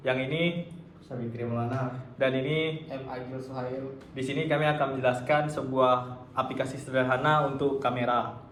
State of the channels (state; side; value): identical; both; correlation 1.00